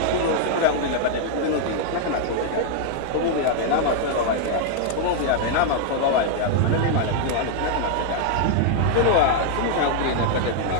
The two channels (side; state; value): both; different; correlation 0.00